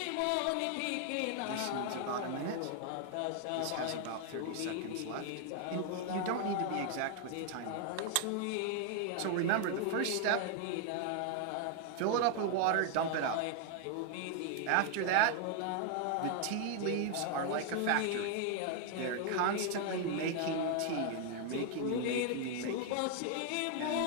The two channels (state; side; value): different; both; correlation 0.00